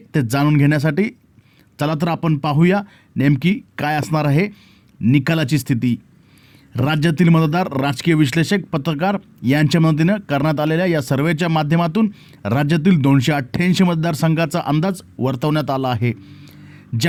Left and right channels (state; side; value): identical; both; correlation 1.00